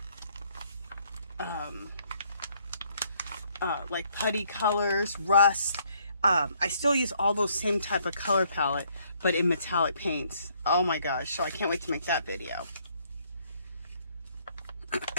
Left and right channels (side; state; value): both; inverted; correlation -0.67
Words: like putty colors, rust. I still use all those same type of color palette, but in metallic paints. Oh my gosh, so I can't wait to make that video.